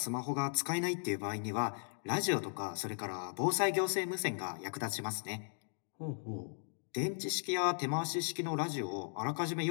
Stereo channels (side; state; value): right; silent; digital silence